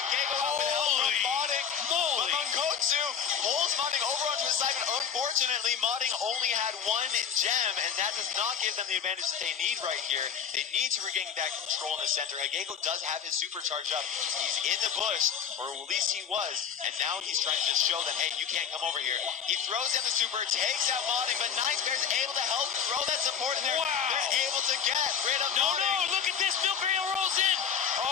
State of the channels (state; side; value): quieter; right; 7.7 dB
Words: Gego out with help from modding. But Monkotsu pulls modding over onto his side, but unfortunately, modding only had one gem, and that does not give them the advantage that they need right here. They need to regain that control in the center. Gego does have his super charged up. He's in the bush, or at least he was, and now he's trying to just show them, hey, you can't come over here. He throws down the super, takes out modding, but Nice Bear's able to help throw that support in there. Wow. They're able to get rid of No, modding. look at this. Milk Rail rolls in.